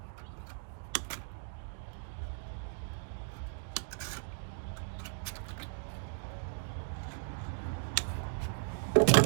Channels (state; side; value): silent; left; digital silence